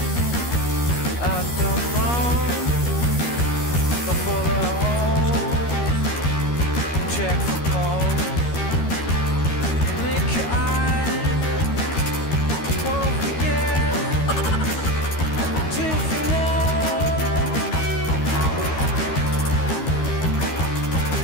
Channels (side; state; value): right; late; 13 ms